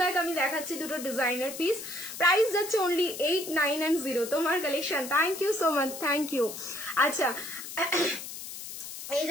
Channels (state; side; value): noise; left; hiss, 10 dB below the sound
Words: আমি দেখাচ্ছি দুটো ডিজাইনার পিস। প্রাইস যাচ্ছে অনলি 8, 9 and 0। তোমার কালেকশন, thank you so much, thank you. আচ্ছা, এই